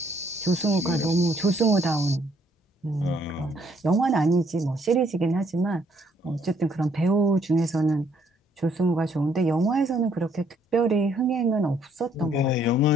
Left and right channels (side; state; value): both; normal; correlation 0.67